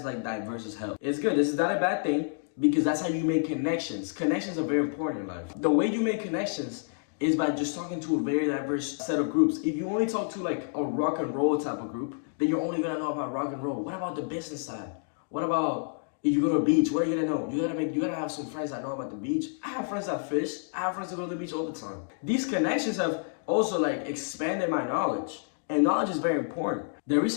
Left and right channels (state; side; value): silent; right; digital silence